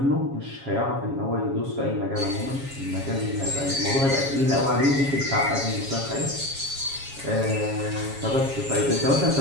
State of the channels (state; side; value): late; left; 7.3 ms